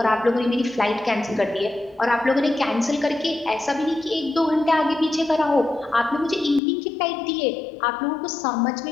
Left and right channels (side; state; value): right; drops out; at 6.6 s